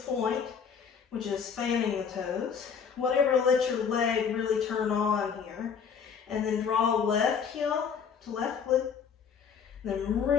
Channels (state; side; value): quieter; right; 6.7 dB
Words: which is fanning the toes. Whatever lets your leg really turn on here. And then draw left heel to left glute. Then